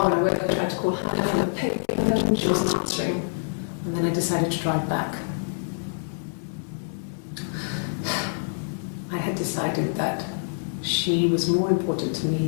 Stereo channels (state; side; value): silent; right; 61 dB below the other